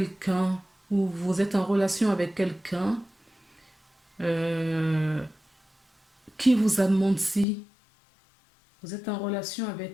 ou vous êtes en relation avec quelqu'un euh, qui vous a menti. Vous êtes en relation avec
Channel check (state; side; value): drops out; right; at 7.5 s